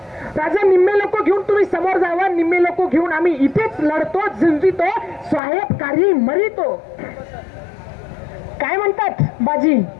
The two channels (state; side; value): drops out; right; at 5.4 s